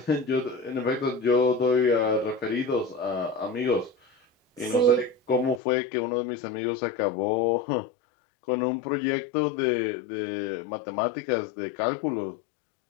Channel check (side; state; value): right; drops out; at 5.6 s